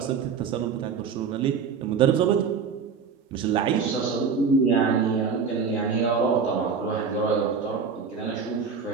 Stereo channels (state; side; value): quieter; left; 5.9 dB